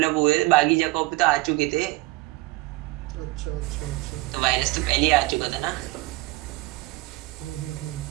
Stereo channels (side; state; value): left; quieter; 20.6 dB